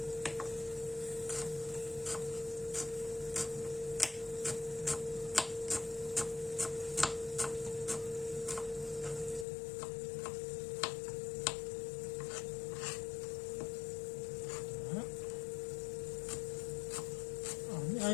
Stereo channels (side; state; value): right; drops out; at 9.5 s